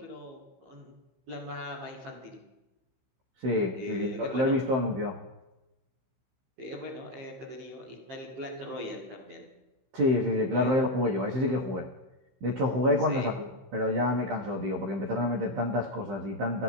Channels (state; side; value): late; left; 16 ms